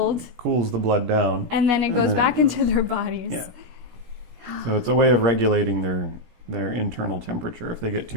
Cools the blood down. And then it goes back into their bodies. Yeah. So it's a way of regulating their internal temperature. If they get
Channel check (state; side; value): late; left; 17 ms